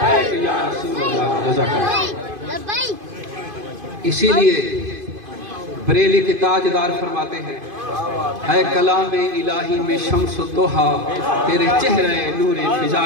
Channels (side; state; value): left; late; 2.5 ms